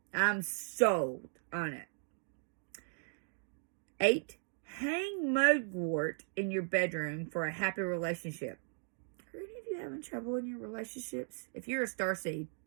I'm sold on it. 8, hang mugwort in your bedroom for a happy relationship. Are any of you having trouble in your relationships? If you're a starseed.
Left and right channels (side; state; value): left; silent; digital silence